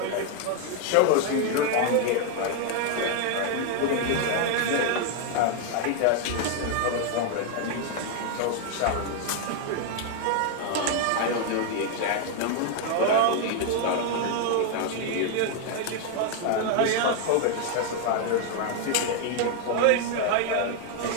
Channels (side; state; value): both; different; correlation 0.00